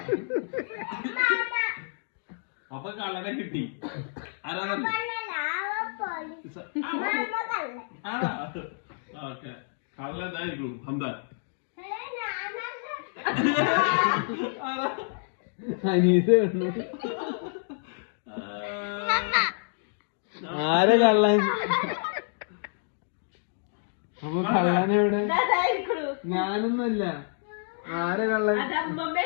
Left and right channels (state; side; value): silent; right; digital silence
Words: അപ്പൊ കള്ളനെ കിട്ടി. ആരാ ഓക്കെ കള്ളനായിരിക്കും ഹംദാൻ. അനീസ് ആരെ കള്ളൻ? അപ്പൊ കള്ളനെവിടെ? ഞാനൊന്നുമല്ല. ആരെ കള്ളൻ?